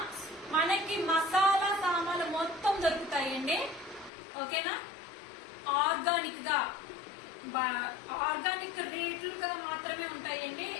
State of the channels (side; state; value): right; drops out; at 4.1 s